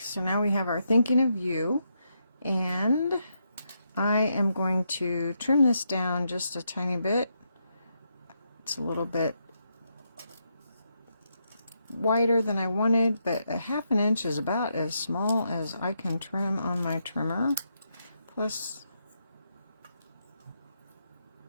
now we have our thinking of you, and I am going to trim this down just a tiny bit. It's a little bit wider than I wanted, but a 1/2 inch is about as small as I can trim on my trimmer. Plus,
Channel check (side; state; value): both; inverted; correlation -0.81